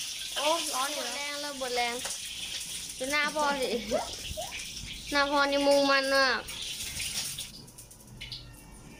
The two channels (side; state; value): both; identical; correlation 1.00